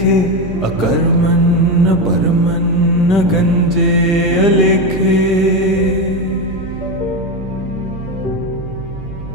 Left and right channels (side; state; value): right; noise; hum, 12 dB below the sound